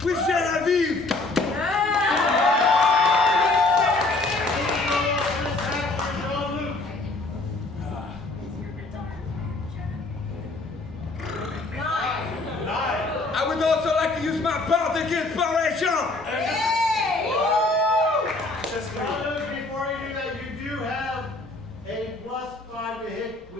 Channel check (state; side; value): quieter; right; 3.2 dB